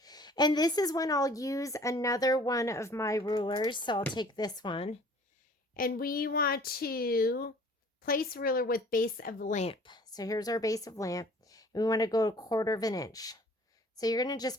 And this is when I'll use another one of my rulers. So I'll take this one. And we want to place ruler with base of lamp. So here's our base of lamp. And we want to go 1/4 inch. So you're going to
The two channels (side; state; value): both; normal; correlation 0.52